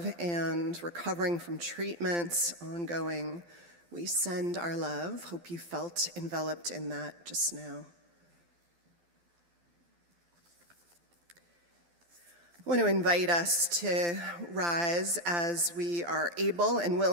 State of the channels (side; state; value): left; late; 12 ms